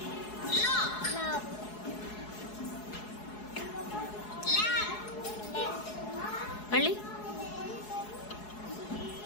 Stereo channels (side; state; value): right; late; 4.7 ms